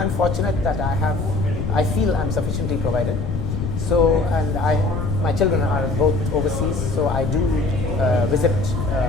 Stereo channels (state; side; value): noise; left; rumble, 4 dB below the sound